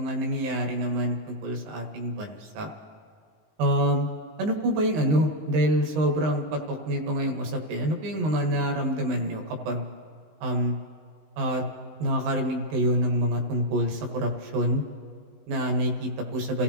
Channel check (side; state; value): left; late; 19 ms